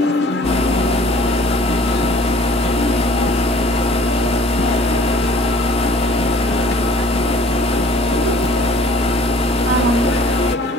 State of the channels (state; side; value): normal; both; correlation 0.52